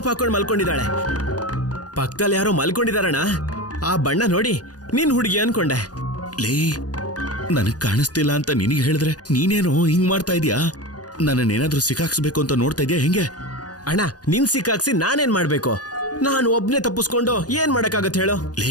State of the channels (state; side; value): late; right; 0.68 ms